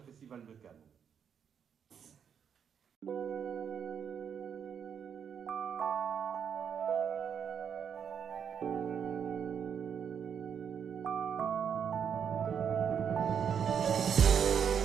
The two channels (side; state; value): left; quieter; 7.6 dB